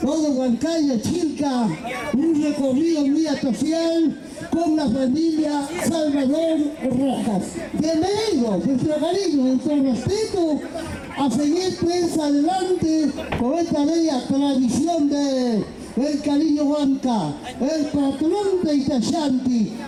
todo Huancayo, Chilca, un recorrido muy especial con la familia Salvador Rojas. Bienvenidos, nuestro cariño, nuestro respeto, a seguir pues adelante con esta bella tradición de el cariño Huanca, el patrón de Itachanti,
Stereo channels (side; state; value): both; identical; correlation 1.00